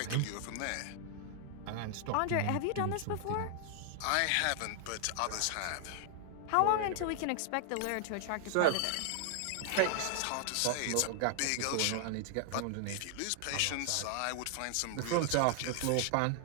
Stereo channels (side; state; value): both; different; correlation 0.00